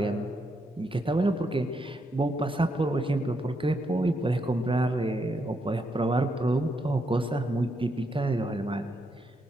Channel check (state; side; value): normal; both; correlation 0.79